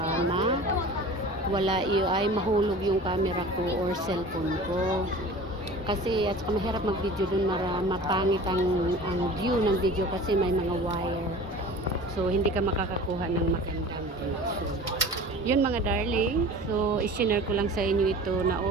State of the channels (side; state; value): both; normal; correlation 0.40